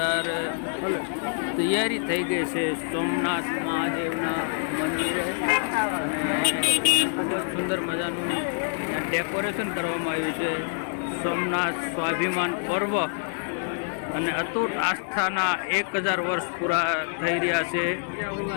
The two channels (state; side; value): silent; right; digital silence